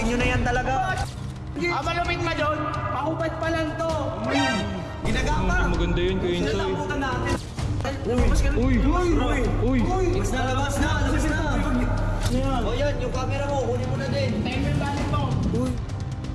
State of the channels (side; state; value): both; identical; correlation 1.00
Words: nyo na yan talaga. Malupit ma doon. Mahubad pa lang to. Ginagapa. Maganda yun, Kuya Insoy. Nalabutan natin. Uy. Labas na. O yan, yung camera mo, kunin mo na din. Tayo mo yung balik mo.